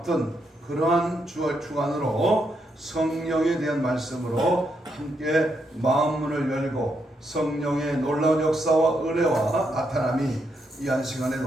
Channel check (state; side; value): normal; both; correlation 0.79